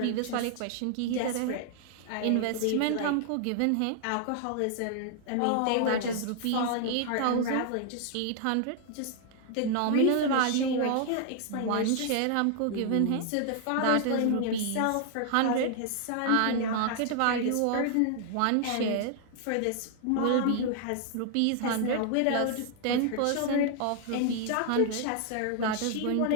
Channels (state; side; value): different; both; correlation 0.00